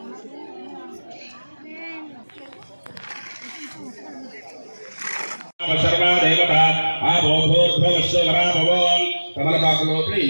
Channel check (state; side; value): inverted; both; correlation -1.00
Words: కలశస్థ వరాభవం కమలపాకు లోపలి